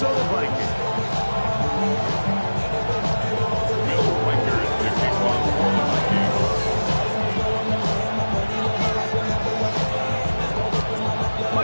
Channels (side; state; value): both; inverted; correlation -1.00